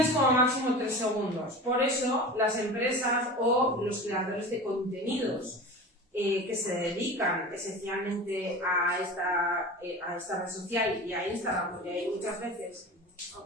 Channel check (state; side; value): normal; both; correlation 0.33